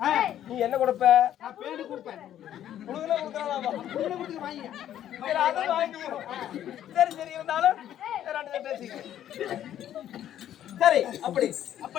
நீ என்ன கொடுப்ப நான் பேடு கொடுப்பேன் கொடுக்கல கொடுக்கறாமா புள்ள கொடுத்து வாங்கி சரி அதை வாங்கிக்கோ சரி சரி இருந்தாலும் ரெண்டு பேசிக்க சரி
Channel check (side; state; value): right; quieter; 11.2 dB